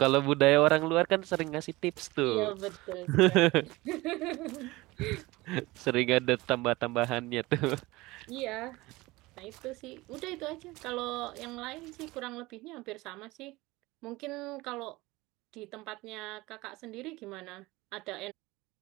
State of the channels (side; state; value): left; quieter; 20.7 dB